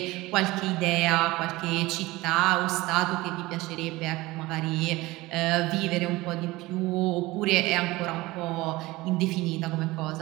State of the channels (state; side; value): quieter; left; 20.0 dB